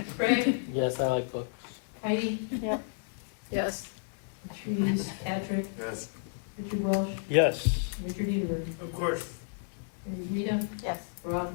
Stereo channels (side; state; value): right; silent; digital silence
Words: Craig? Yes, I like books. Heidi? Yep. Yes. Patrice, Patrick, Yes. Richard Welsh, Yes. Richard Edenberg, Of course. Rita, Yes.